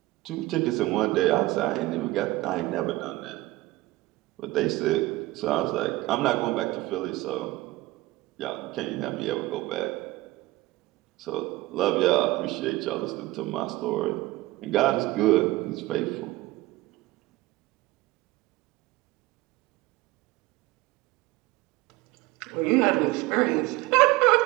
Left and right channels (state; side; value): quieter; left; 19.0 dB